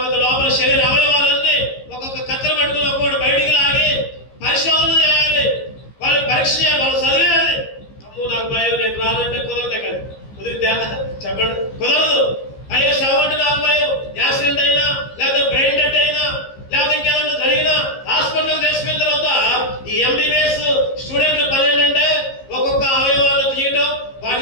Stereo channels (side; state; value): right; late; 15 ms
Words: లోపల శరీర అవయవాలన్నీ ఒక్కొక్క కత్తెర పట్టుకుని ఒక్కొక్కటి బయటికి లాగి పరిశోధన చేయాలి, వాళ్ళు పరీక్ష చేయాలి, వాళ్ళు చదివేయాలి. అమ్మో నాకు భయం, నేను రానంటే కుదరదు. కదా కుదిరితే చెప్పండి, కుదరదు. అయ్యో శవం అంటే నాకు భయం, యాక్సిడెంట్ అయినా, లేకపోతే బ్రెయిన్ డెత్ అయినా, లేకపోతే ఇంకేదన్నా జరిగినా హాస్పిటల్ తీసుకున్న తర్వాత ఈ ఎంబీబీఎస్ స్టూడెంట్లు పని ఏంటంటే ఒక్కొక్క అవయవాలను తీయటం, వాటి